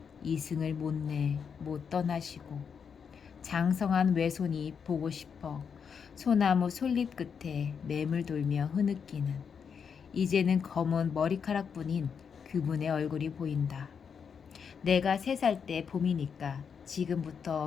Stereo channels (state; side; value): quieter; right; 6.7 dB